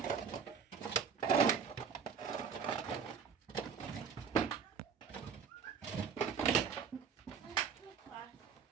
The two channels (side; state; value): left; quieter; 6.7 dB